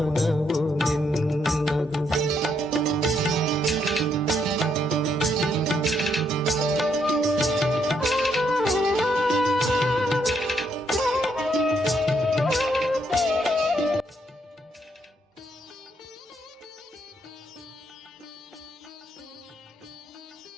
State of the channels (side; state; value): both; normal; correlation 0.74